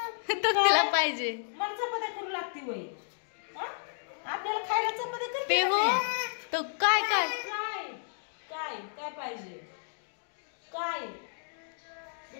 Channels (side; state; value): right; silent; digital silence